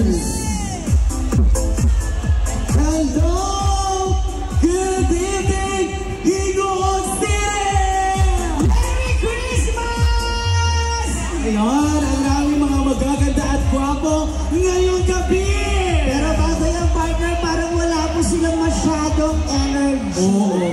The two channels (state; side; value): identical; both; correlation 1.00